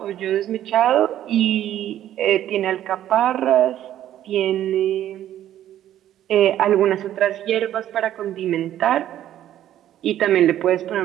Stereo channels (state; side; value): quieter; left; 12.0 dB